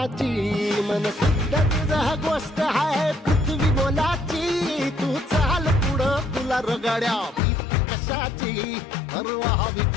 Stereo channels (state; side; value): drops out; right; at 7.4 s